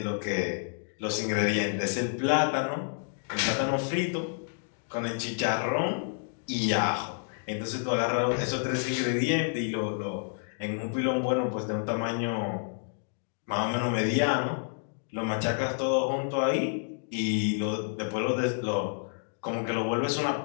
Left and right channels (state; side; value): silent; right; digital silence